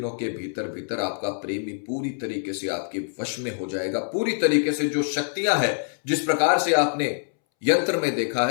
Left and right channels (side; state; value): right; silent; 62 dB below the other